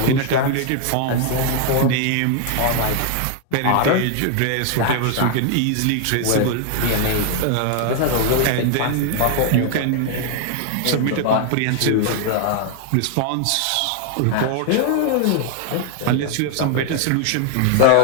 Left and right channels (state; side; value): different; both; correlation 0.00